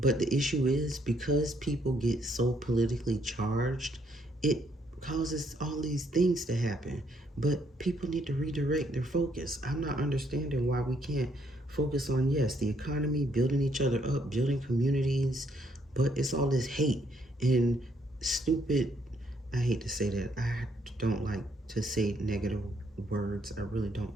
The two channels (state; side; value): normal; both; correlation 0.71